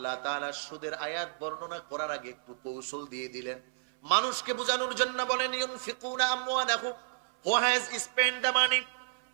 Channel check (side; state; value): left; silent; 57 dB below the other